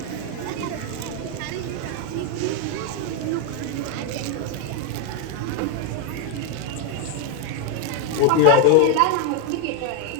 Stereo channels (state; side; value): different; both; correlation 0.01